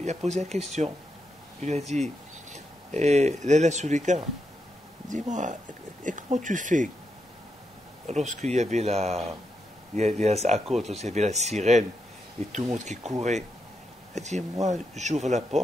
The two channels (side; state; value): both; normal; correlation 0.83